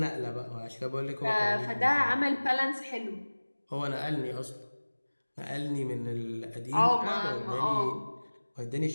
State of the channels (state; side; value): inverted; both; correlation -1.00